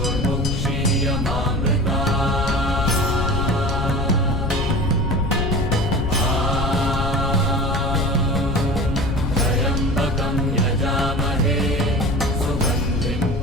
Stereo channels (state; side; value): noise; left; rumble, 2 dB below the sound